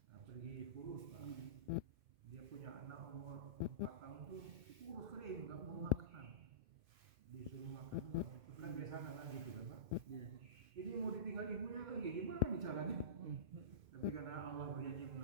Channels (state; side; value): late; left; 2.1 ms